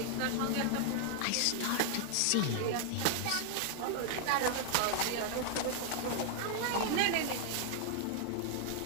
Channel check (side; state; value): both; different; correlation 0.00